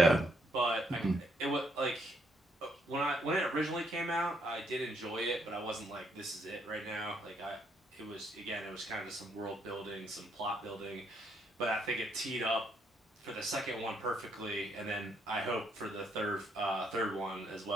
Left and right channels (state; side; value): normal; both; correlation 0.73